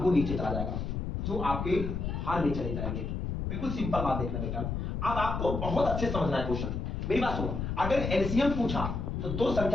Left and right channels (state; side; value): noise; left; rumble, 3 dB below the sound